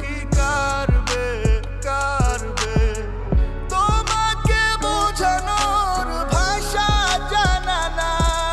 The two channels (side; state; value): both; identical; correlation 1.00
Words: কি কারবে কারবে, তোমাকে বোঝানোর ভাষা জানা